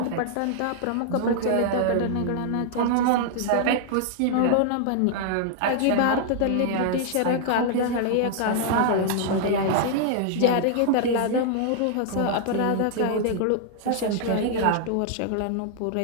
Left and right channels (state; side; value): different; both; correlation -0.01